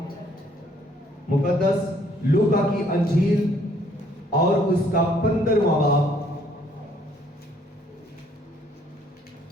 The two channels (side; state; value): both; normal; correlation 0.64